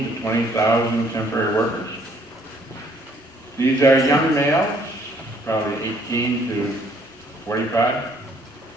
to 20,000 temporary workers. These are young males, probably 18 to 45.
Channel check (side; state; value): both; normal; correlation 0.63